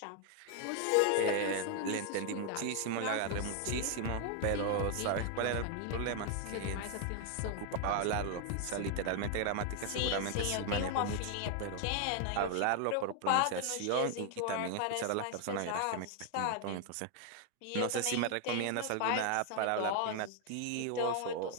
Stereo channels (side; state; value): both; different; correlation 0.00